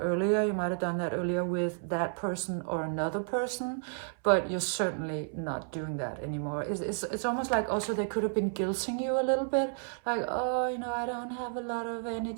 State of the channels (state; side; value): silent; left; 57 dB below the other